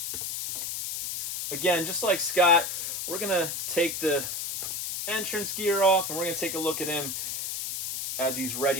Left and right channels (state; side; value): noise; left; hiss, 4 dB below the sound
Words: Again, just like Scott, we're going to take the entrance gear off, and we're going to take a look at him as he's